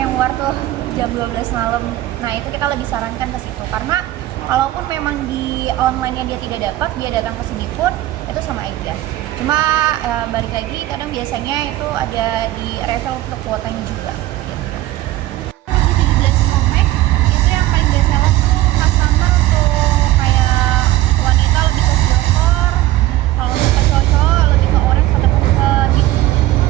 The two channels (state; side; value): quieter; left; 15.6 dB